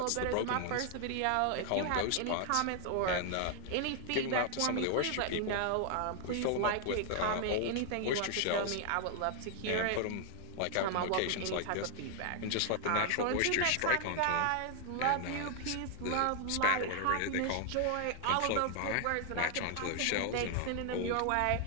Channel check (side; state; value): both; different; correlation 0.00